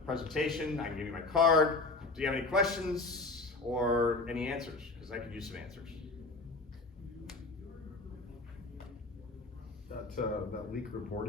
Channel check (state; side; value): quieter; right; 3.4 dB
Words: presentation. I can give you my card. Do you have any questions or any answers? Because I could use some answers. That leak